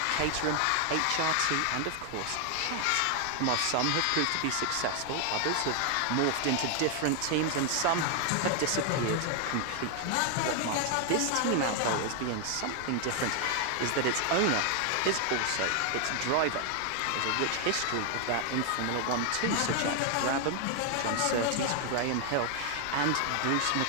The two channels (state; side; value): different; both; correlation 0.00